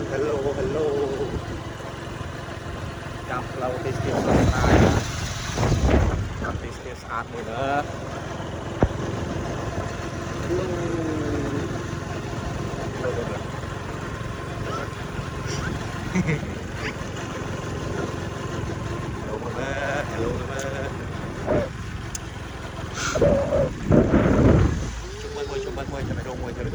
hello hello gặp lâu thì still sunshine gặp thì still sát mùi nữa hello hello hello hello mama hello mama chúc mừng mời cho mày đông mời cho mày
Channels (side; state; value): both; identical; correlation 1.00